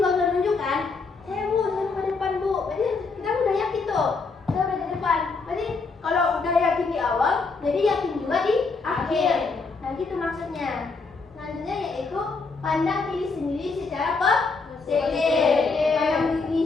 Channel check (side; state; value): right; quieter; 4.3 dB